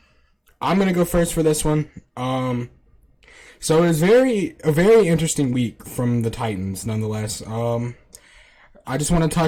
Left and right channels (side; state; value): both; identical; correlation 1.00